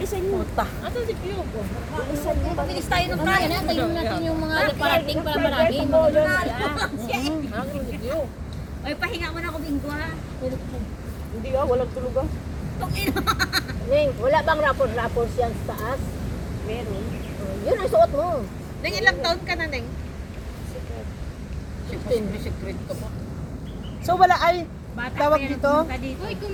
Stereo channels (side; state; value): both; identical; correlation 1.00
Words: mo. Puta. Asan si Q? Bilis tayo ng kaya na, tayo natin yung mga parating para marami. Asan si Q? Ay, pahinga mo na ako, Bingo ha. Hindi walang tulog ah. Ning, wala bang rapor yan sa taas? Meron. Yun ang suot mo. Neng, ilang taon ka na, Neng? natin. Secret ko pa. So wala ay Bata tawag pa yan, dito? pumunta dito. Uy,